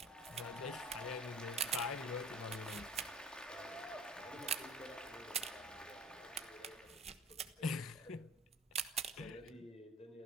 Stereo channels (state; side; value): normal; both; correlation 0.46